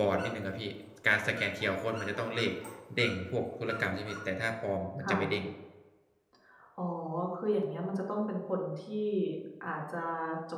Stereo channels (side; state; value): both; identical; correlation 1.00